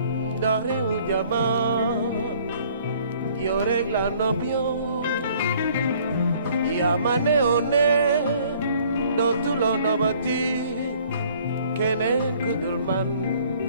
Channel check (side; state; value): both; inverted; correlation -0.58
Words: ndax réew jama yow rek la nopp yow yaa ma neewoon ne dootuloo nobati keneen ku dul man